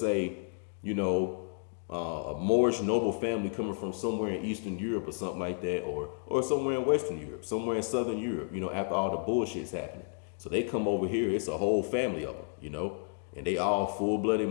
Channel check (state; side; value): silent; right; digital silence